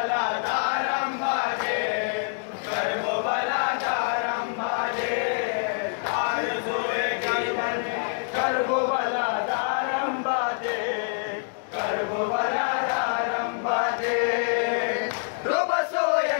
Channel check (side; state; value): right; silent; digital silence